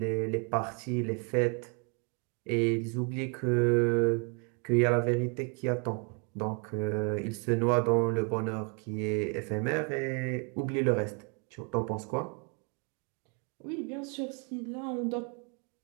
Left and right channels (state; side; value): quieter; left; 36.8 dB